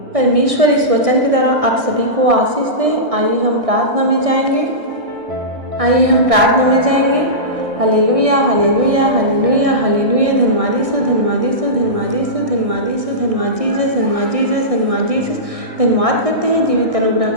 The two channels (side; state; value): left; late; 1.6 ms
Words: परमेश्वर इस वचन के द्वारा आप सभी को आशीष दे। आइए हम प्रार्थना में जाएंगे। Hallelujah, hallelujah, hallelujah, hallelujah. धन्यवाद यीशु, धन्यवाद यीशु, धन्यवाद यीशु, धन्यवाद यीशु, धन्यवाद जीसस, धन्यवाद जीसस, धन्यवाद जीसस। धन्यवाद करते हैं जीवित